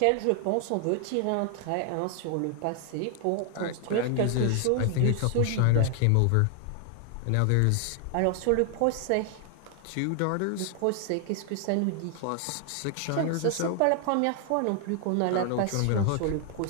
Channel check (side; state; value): both; different; correlation 0.00